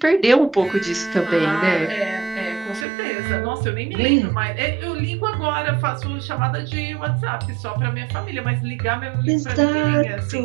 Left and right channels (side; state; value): left; drops out; at 2.9 s